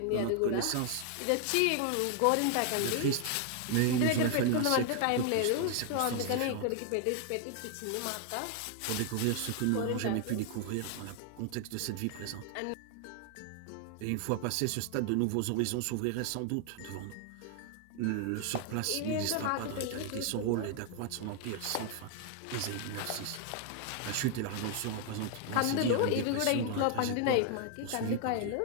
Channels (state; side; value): different; both; correlation 0.00